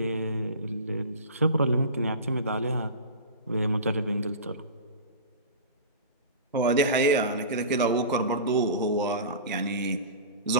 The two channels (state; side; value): inverted; both; correlation -0.32